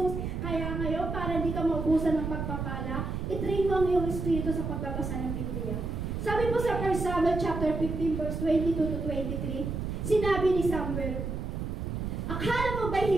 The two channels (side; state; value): right; noise; rumble, 3 dB below the sound